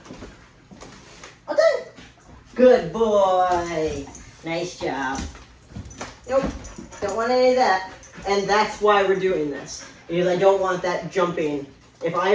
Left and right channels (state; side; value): identical; both; correlation 1.00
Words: All done. Good boy. Nice job. Nope. Don't want any of that. And that's why we're doing this. Because I don't want that jumping. If I